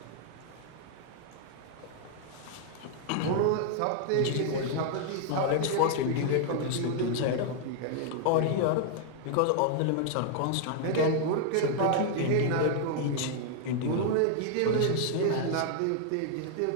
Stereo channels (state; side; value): different; both; correlation 0.00